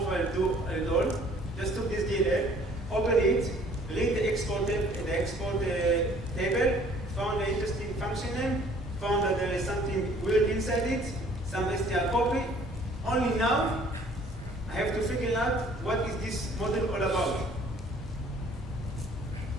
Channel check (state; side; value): normal; both; correlation 0.56